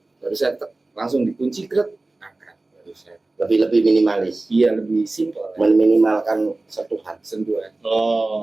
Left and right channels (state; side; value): quieter; left; 3.1 dB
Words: baru saya langsung dikunci krek, angkat. Baru saya. Lebih minimalis, Iya, lebih simpel. meminimalkan sentuhan. Sentuhan. Oh.